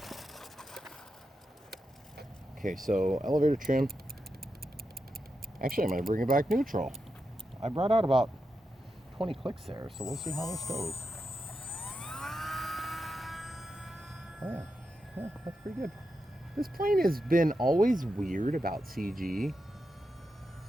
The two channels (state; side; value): normal; both; correlation 0.87